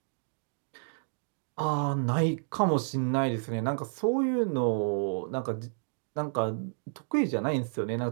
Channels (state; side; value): silent; left; digital silence